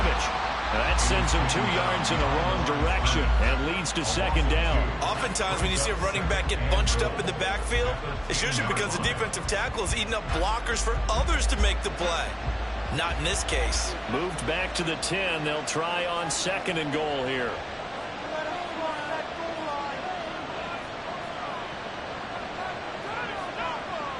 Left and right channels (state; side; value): identical; both; correlation 1.00